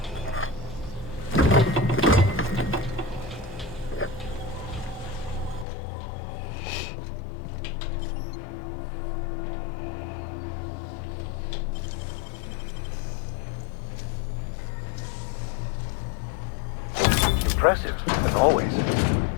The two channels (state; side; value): drops out; right; at 5.7 s